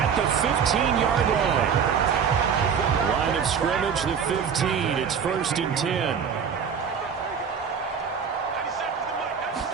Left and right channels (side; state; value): left; quieter; 6.9 dB